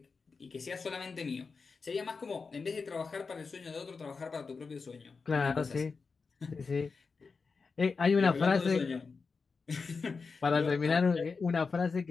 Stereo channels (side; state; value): right; quieter; 4.7 dB